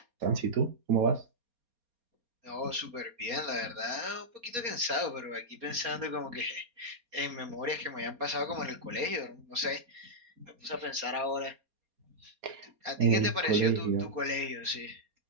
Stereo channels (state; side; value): late; left; 4.2 ms